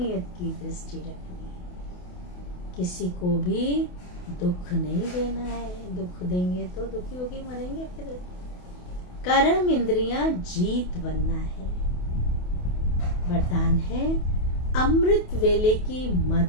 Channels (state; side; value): late; right; 28 ms